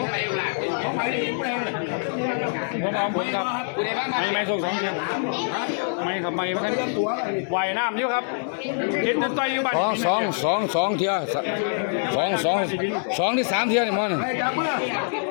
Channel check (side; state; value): right; silent; digital silence